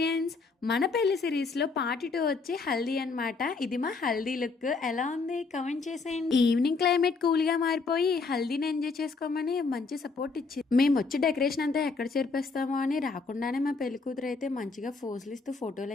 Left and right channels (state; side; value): quieter; right; 4.3 dB